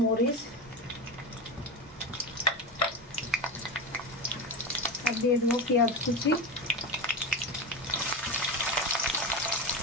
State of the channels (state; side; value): normal; both; correlation 0.20